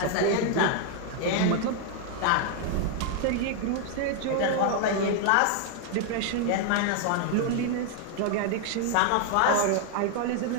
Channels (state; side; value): different; both; correlation 0.00